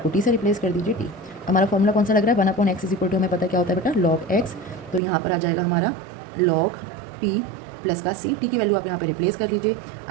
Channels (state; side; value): drops out; left; at 5.0 s